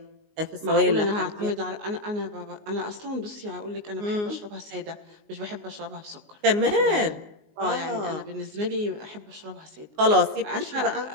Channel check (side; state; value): left; late; 19 ms